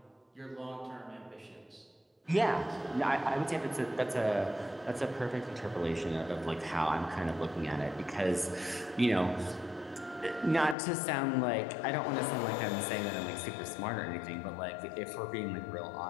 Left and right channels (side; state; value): right; drops out; at 10.8 s